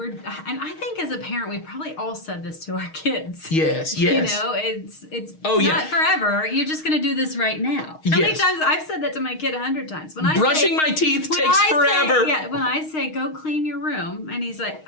I think as a parent, we probably all said this to our kids. Yes. You know, it's Oh, yeah. not forever. You're just going to do this right now. How many Yes. times I've said that to my kid 100 times. When I Brushing say, my teeth when takes I forever. Say, when I say go clean your room, and he's like,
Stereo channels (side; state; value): right; late; 6.4 ms